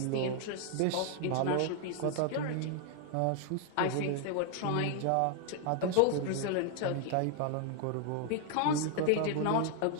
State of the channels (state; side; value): different; both; correlation 0.01